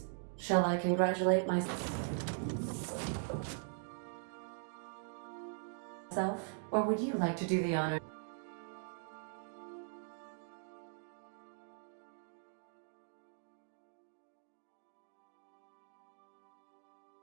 Shall I congratulate myself? myself, or would you like to do the honor?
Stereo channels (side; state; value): left; silent; digital silence